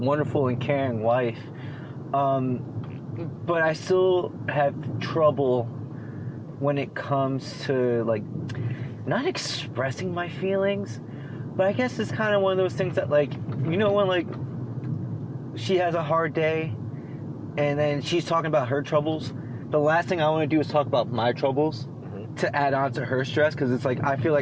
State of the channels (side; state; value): both; identical; correlation 1.00